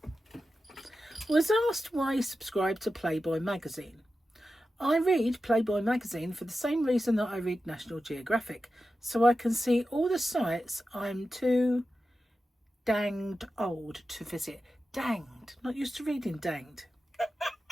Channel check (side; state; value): both; normal; correlation 0.92